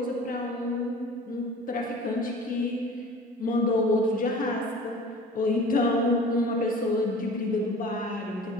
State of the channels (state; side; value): normal; both; correlation 0.42